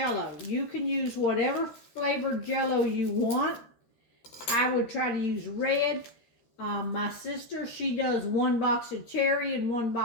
You can use whatever flavored Jell-O you want. I would try to use red. My sister, she does 1 box of cherry and 1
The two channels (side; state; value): right; late; 13 ms